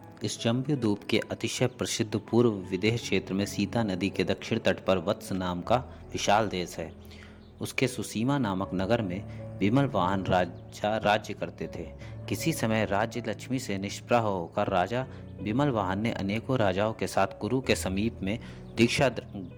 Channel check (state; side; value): identical; both; correlation 1.00